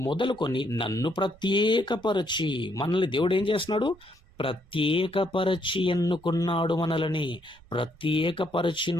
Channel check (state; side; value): noise; right; rumble, 27 dB below the sound